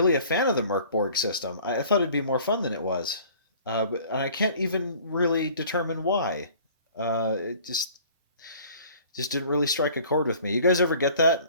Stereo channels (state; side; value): inverted; both; correlation -0.50